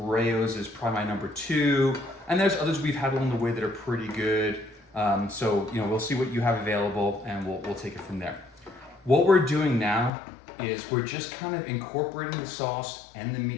is probably my #2. And there's others we've had along the way that are pretty good. So, you know, we'll see what you have available and we'll take it from there. What we're doing now is we're just kind of incorporating the sauce and the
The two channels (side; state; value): right; drops out; at 10.1 s